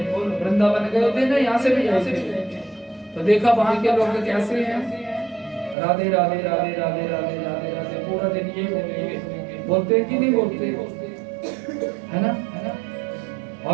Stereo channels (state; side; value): drops out; left; at 5.8 s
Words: वृंदावन गए थे ना, यहाँ से भी गए थे, तो देखा वहां के लोग कैसे हैं? राधे राधे राधे राधे राधे राधे राधे पूरा दिन ये बोलेंगे। बोलते हैं कि नहीं बोलते? है ना?